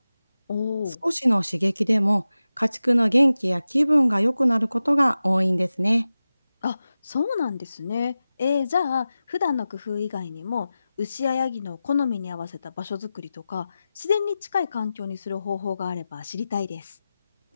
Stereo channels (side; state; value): both; inverted; correlation -0.94